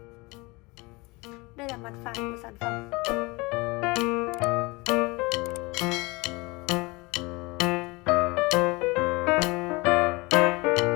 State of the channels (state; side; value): quieter; right; 24.8 dB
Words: Đây là mặt phẳng của sản phẩm.